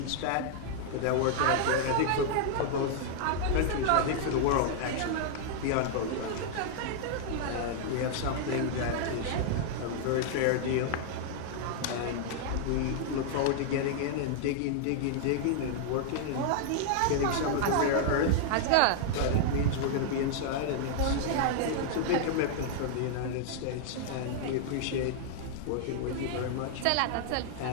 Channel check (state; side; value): different; both; correlation -0.01